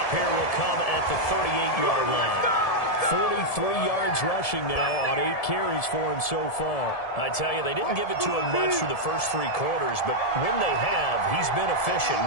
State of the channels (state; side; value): late; right; 1.7 ms